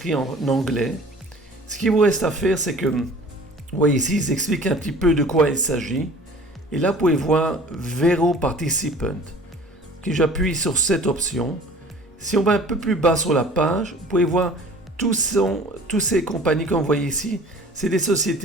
en anglais. Ce qu'il vous reste à faire, c'est que, vous voyez ici, ils expliquent un petit peu de quoi il s'agit. Et là, vous pouvez voir Vero Participant. Okay, j'appuie sur cette option. Si on va un peu plus bas sur la page, vous pouvez voir tous ces compagnies comme vous voyez ici. C'est des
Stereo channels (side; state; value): both; normal; correlation 0.46